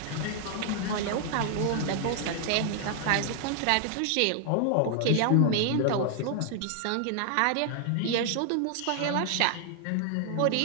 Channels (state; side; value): different; both; correlation 0.00